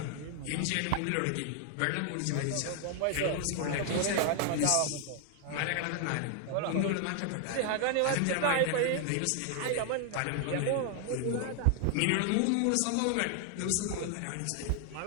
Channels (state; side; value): different; both; correlation 0.00